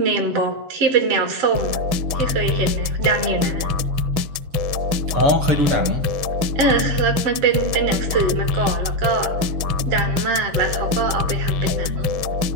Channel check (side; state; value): left; late; 6.3 ms